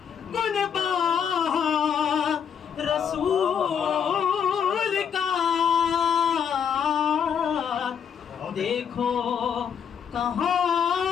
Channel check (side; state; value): right; quieter; 7.7 dB